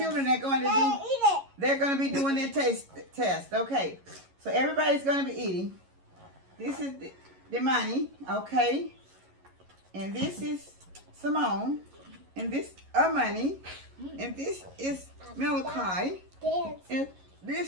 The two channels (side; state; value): left; late; 11 ms